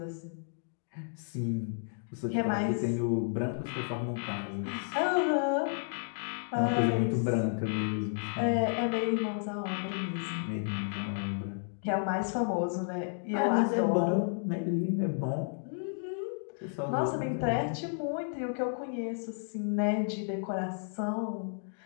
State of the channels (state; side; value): silent; right; digital silence